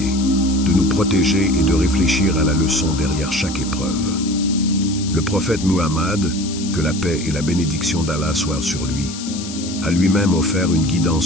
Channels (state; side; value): noise; left; hiss, 11 dB below the sound